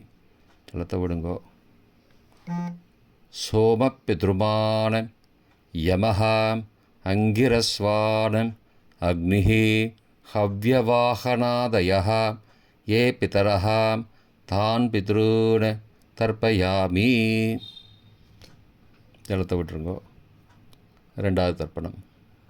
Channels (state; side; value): identical; both; correlation 1.00